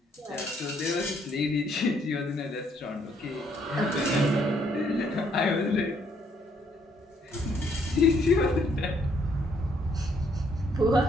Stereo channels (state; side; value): normal; both; correlation 0.69